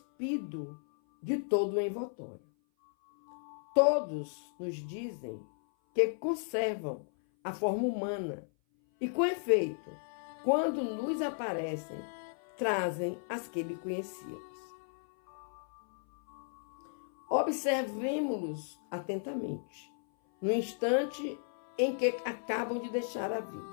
de todo o envoltório. Todos nos dizem que conservam a forma humana e, com efeito, quando nos aparecem, trazem as que lhe conhecíamos. Observemo-los atentamente. No instante em que acabam de deixar a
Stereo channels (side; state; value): right; silent; 55 dB below the other